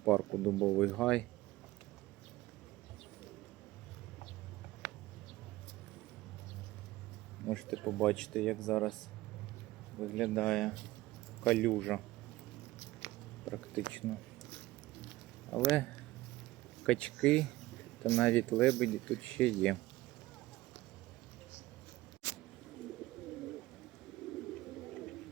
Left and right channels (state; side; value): quieter; left; 17.8 dB